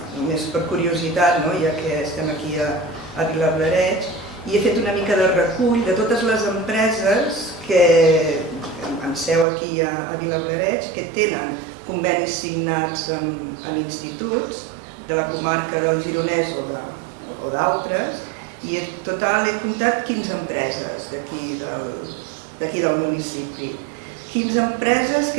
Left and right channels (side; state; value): left; drops out; at 9.5 s